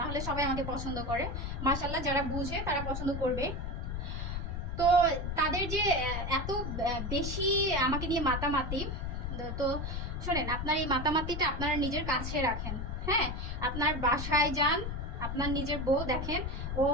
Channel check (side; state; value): left; noise; rumble, 4 dB below the sound